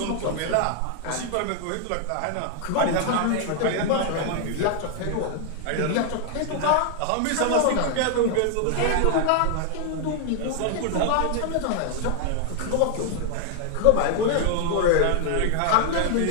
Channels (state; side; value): different; both; correlation 0.00